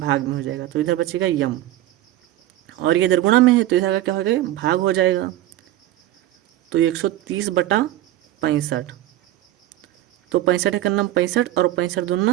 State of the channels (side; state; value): left; quieter; 14.3 dB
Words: में हो जाएगा। तो इधर बचेगा यम, और ये इधर गुणा में है तो इधर आकर क्या हो जाएगा, भाग हो जाएगा। तो 130/65, तो 65 का नाम 65 और 65